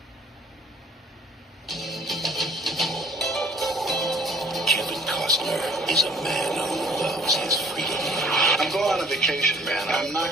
Is a man who loves his freedom. I'm going on a vacation, man. I'm not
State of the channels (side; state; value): both; normal; correlation 0.56